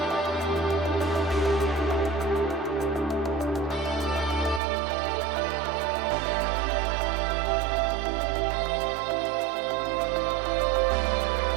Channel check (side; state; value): left; drops out; at 4.6 s